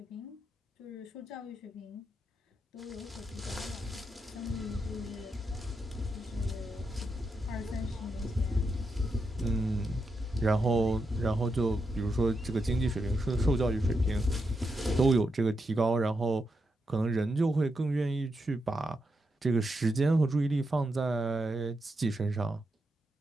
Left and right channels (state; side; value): normal; both; correlation 0.84